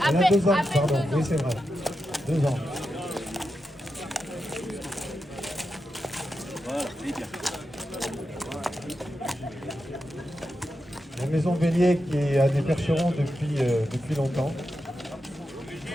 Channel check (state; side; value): normal; both; correlation 0.88